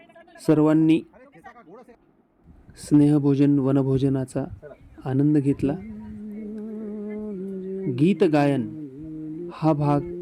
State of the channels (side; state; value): both; identical; correlation 1.00